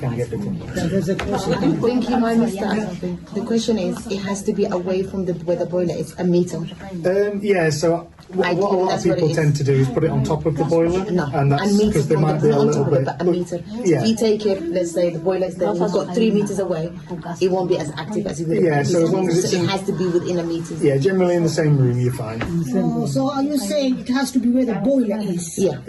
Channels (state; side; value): identical; both; correlation 1.00